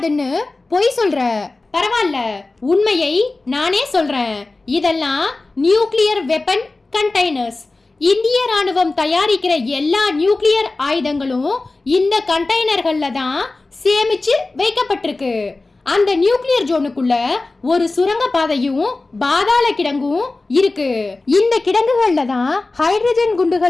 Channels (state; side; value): quieter; right; 3.3 dB